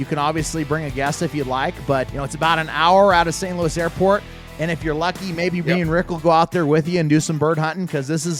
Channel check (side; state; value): both; identical; correlation 1.00